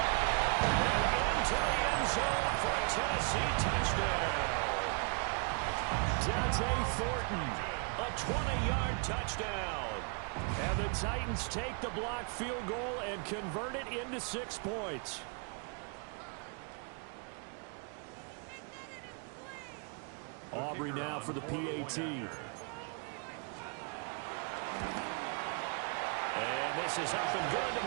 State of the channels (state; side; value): quieter; left; 37.8 dB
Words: And into the end zone for a Tennessee touchdown. Dante Thornton, a 20-yard touchdown. And the Titans take the blocked field goal and convert it into 6 points. Aubrey now for the PAT. And this is up and good to